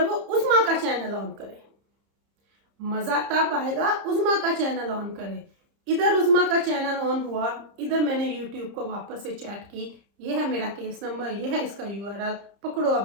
वो उस्मा का चैनल ऑन करे, मजा तब आएगा उस्मा का चैनल ऑन करे। इधर उस्मा का चैनल ऑन हुआ, इधर मैंने YouTube को वापस से चैट की, ये है मेरा केस नंबर, ये है इसका URL, पकड़ो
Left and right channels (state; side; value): late; left; 30 ms